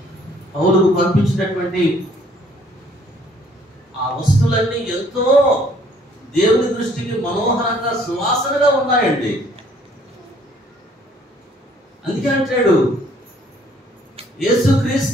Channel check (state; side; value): normal; both; correlation 0.61